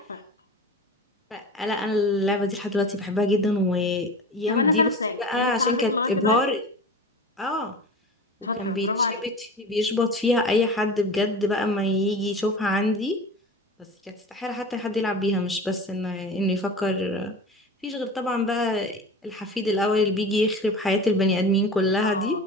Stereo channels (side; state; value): both; normal; correlation 0.33